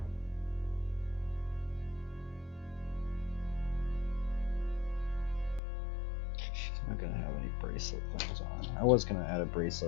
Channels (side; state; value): right; drops out; at 5.6 s